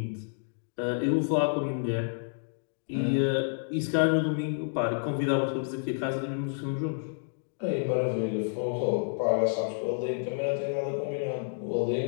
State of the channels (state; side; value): silent; right; digital silence